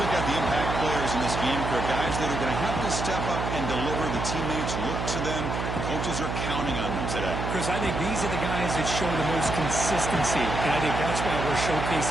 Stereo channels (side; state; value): right; noise; hum, 3 dB below the sound